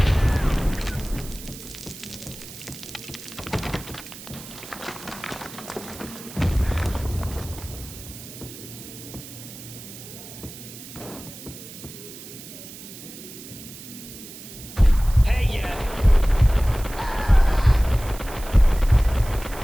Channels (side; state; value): right; noise; hiss, 14 dB below the sound